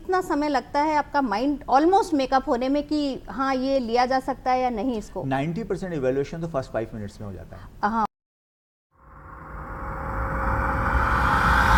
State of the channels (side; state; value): both; identical; correlation 1.00